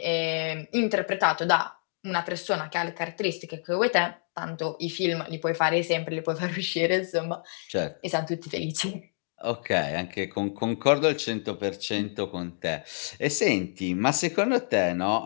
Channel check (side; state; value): right; silent; digital silence